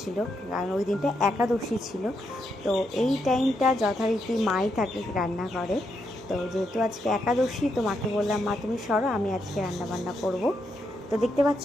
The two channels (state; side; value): noise; right; hum, 24 dB below the sound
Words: কারণ ওই দিনটা একাদশী ছিল। তো এই টাইমটা যথারীতি মাই থাকে রান্না করে। তো যেহেতু আজকে একাদশী, তো মাকে বললাম, মা তুমি সরো, আমি আজকে রান্না বান্না করব। তো দেখতে